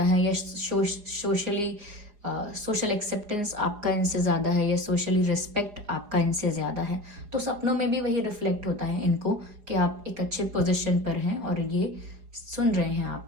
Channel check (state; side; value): late; left; 4.8 ms